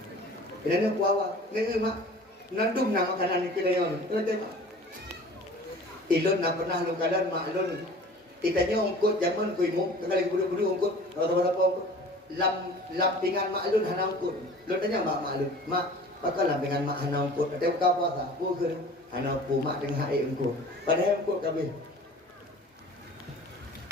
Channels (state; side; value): normal; both; correlation 0.44